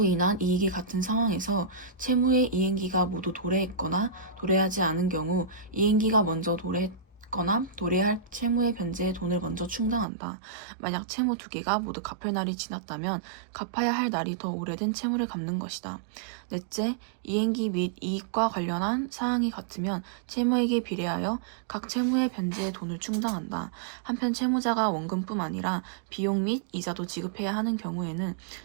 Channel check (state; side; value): drops out; left; at 10.1 s